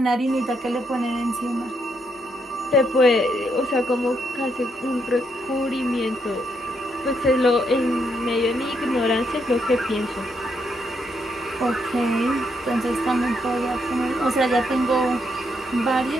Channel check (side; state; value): both; normal; correlation 0.77